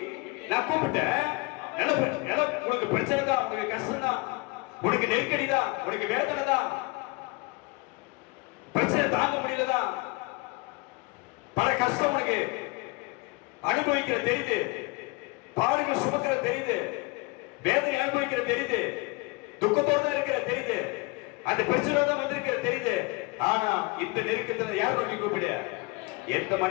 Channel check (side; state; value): right; quieter; 25.5 dB